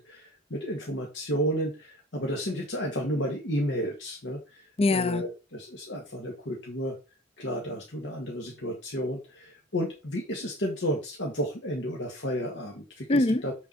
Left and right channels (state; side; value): normal; both; correlation 0.46